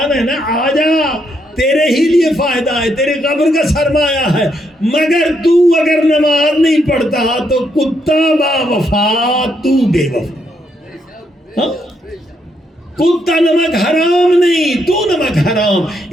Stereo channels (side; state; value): both; normal; correlation 0.77